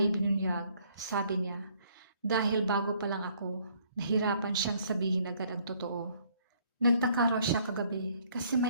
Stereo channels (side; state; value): both; inverted; correlation -0.64